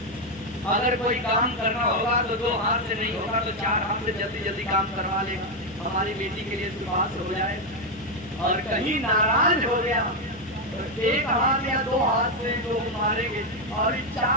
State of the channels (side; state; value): both; normal; correlation 0.05